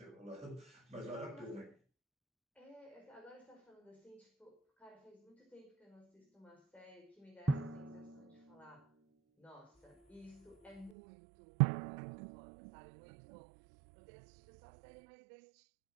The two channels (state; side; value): drops out; left; at 10.9 s